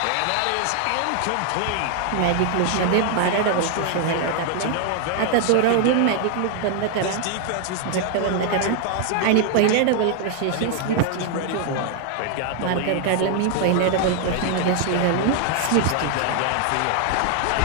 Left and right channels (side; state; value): both; different; correlation 0.00